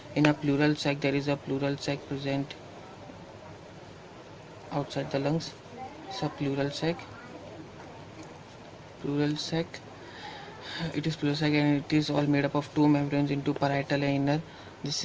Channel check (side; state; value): both; identical; correlation 1.00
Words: in a pleural sac. There is a pleural sac present outside the lungs. It's a pleural sac. It is pleurosac and it is all made up of two membranes into parietal and inner. This